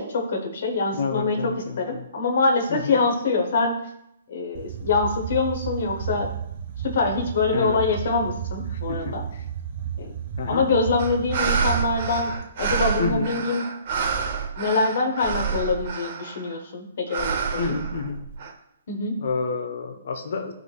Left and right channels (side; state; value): both; inverted; correlation -0.53